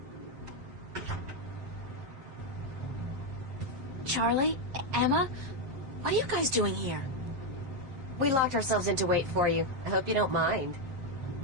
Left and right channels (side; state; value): left; late; 7.5 ms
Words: Charlie? Emma? What are you guys doing here? We locked ourselves in to wait for you. I hope you don't mind.